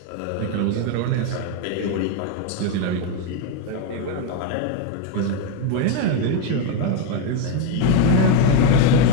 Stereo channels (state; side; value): different; both; correlation 0.02